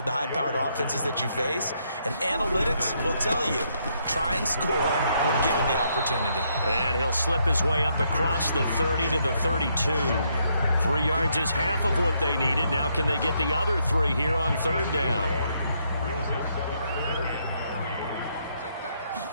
the high-powered offenses that you face. And analytics will tell you, try and score when given the opportunity. And he'll slip his way up across the 30 to the 32. 3 yards is half of what they needed. Now can they get the other 3 here on third down?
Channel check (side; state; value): both; inverted; correlation -0.74